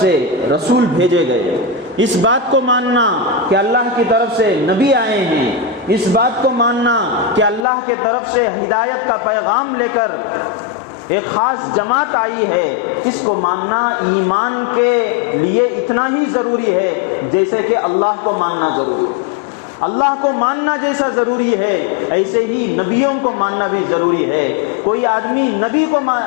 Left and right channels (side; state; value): right; drops out; at 7.7 s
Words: رسول بھیجے گئے، اس بات کو ماننا کہ اللہ کی طرف سے نبی آئے ہیں، اس بات کو ماننا کہ اللہ کی طرف سے ہدایت کا پیغام لے کر ایک خاص جماعت آئی ہے، اس کو ماننا ایمان کے لیے اتنا ہی ضروری ہے جیسے کہ اللہ کو ماننا ضروری ہے۔ اللہ کو ماننا جیسا ضروری ہے ایسے ہی نبیوں کو ماننا بھی ضروری ہے۔ کوئی آدمی نبی کو